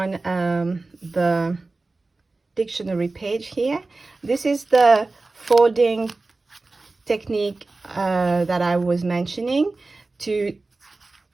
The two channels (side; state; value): left; quieter; 3.4 dB